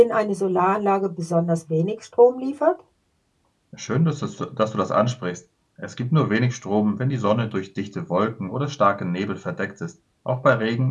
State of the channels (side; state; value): both; identical; correlation 1.00